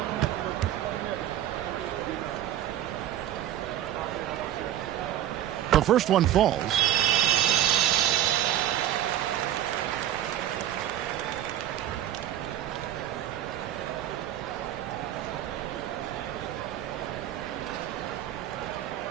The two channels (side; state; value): left; quieter; 12.0 dB